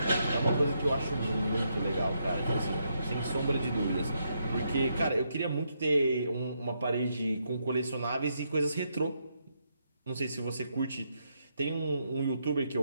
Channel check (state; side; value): inverted; both; correlation -0.79